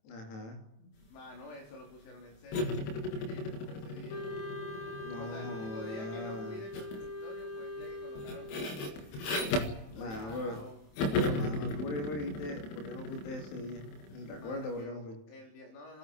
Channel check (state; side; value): late; right; 27 ms